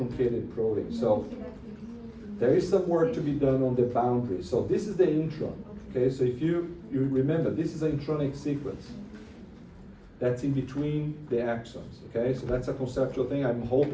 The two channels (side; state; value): both; identical; correlation 1.00